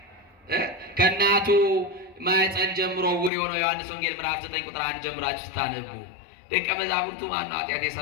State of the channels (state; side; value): drops out; right; at 3.3 s